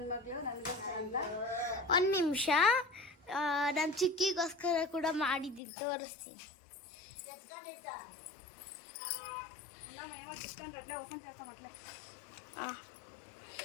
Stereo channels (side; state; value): right; drops out; at 5.6 s